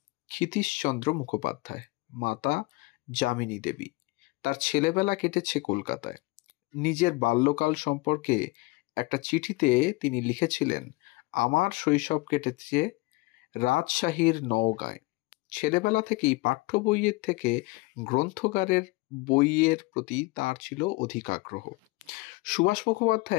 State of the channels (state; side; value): quieter; right; 23.0 dB